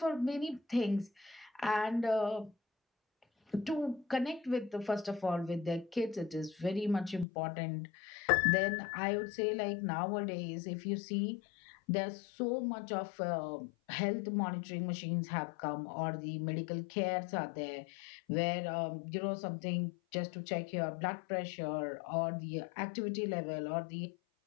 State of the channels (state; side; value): drops out; right; at 7.2 s